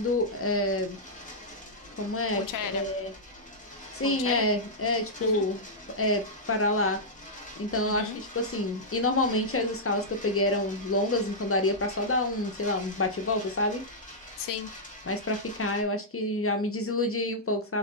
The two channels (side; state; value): both; normal; correlation -0.08